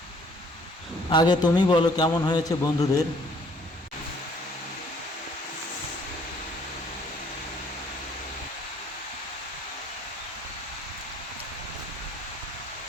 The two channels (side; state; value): both; normal; correlation 0.60